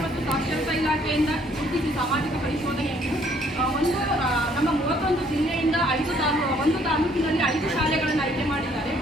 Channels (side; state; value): both; normal; correlation 0.63